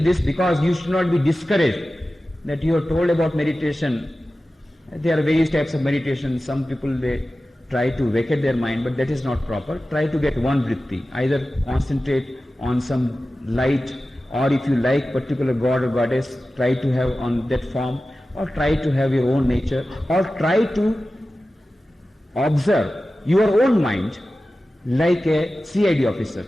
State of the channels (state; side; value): normal; both; correlation 0.95